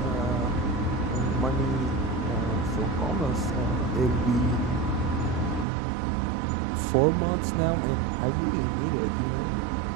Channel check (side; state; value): left; drops out; at 5.7 s